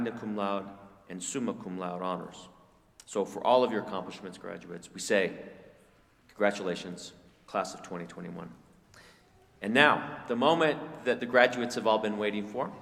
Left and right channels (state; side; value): identical; both; correlation 1.00